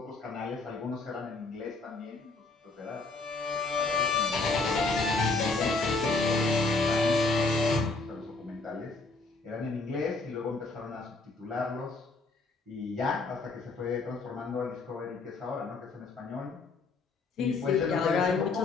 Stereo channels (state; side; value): quieter; right; 3.7 dB